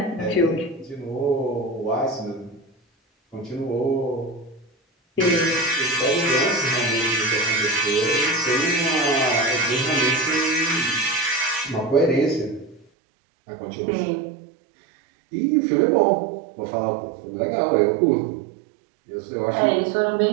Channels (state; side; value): drops out; left; at 12.9 s